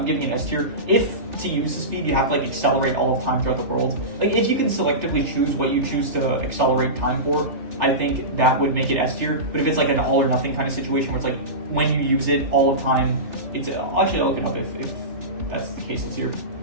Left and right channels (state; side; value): late; left; 3.3 ms